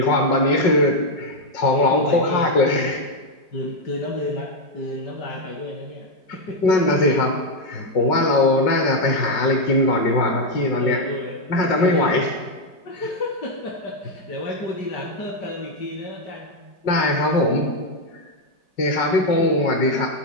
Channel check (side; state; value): right; late; 5.4 ms